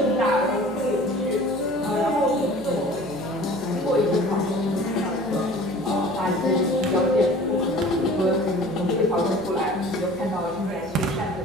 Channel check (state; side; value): noise; left; hum, 23 dB below the sound